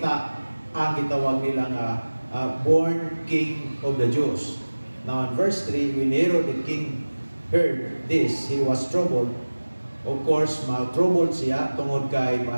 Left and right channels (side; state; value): both; inverted; correlation -1.00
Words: ang gitawag nila nga born King of the Jews. Now in verse 3, when Herod the king heard this, he was troubled. Of course, troubled siya tungod kay